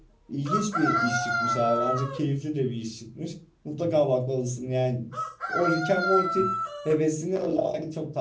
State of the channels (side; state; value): both; identical; correlation 1.00